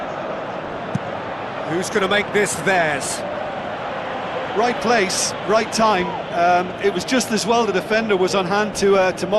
Who's going to make this theirs? Right place, right time. It was just as well the defender was on hand to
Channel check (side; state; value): both; identical; correlation 1.00